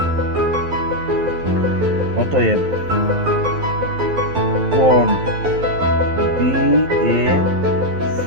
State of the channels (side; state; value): left; late; 12 ms